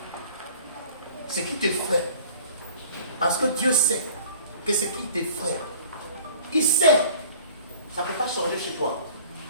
Ce qui t'effraie, parce que Dieu sait que ce qui t'effraie, il sait, ça ne peut pas changer chez toi.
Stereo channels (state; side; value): inverted; both; correlation -0.49